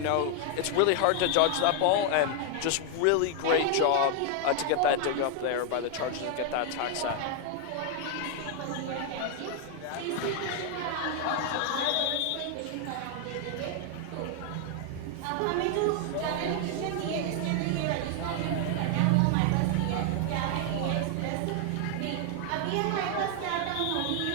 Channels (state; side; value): different; both; correlation 0.00